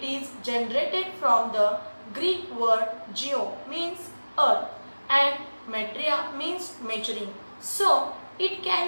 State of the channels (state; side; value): inverted; both; correlation -1.00